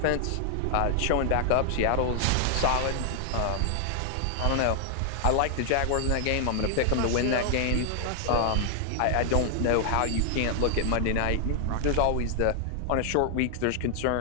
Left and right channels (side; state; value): both; different; correlation 0.00